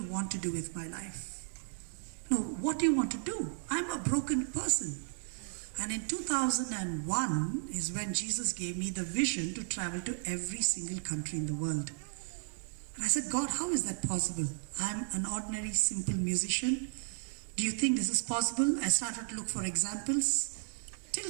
want to do with my life? No, what do you want to do? I'm a broken person. And in 2001 is when Jesus gave me the vision to travel to every single country in the world. And I said, God, how is that possible? I'm an ordinary, simple musician. Do you think this is possible? I started to look for examples.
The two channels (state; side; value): silent; left; digital silence